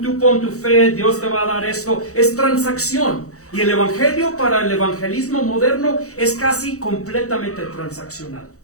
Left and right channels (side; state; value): right; late; 0.65 ms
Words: pon tu fe, Dios te va a dar esto. Es transacción. Y el Evangelio para el evangelismo moderno es casi completamente transaccional.